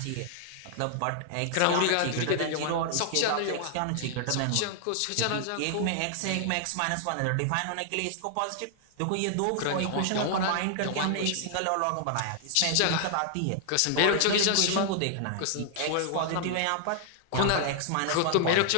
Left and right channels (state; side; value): different; both; correlation 0.00